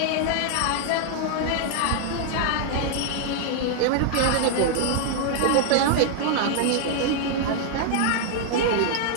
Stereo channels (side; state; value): both; different; correlation 0.00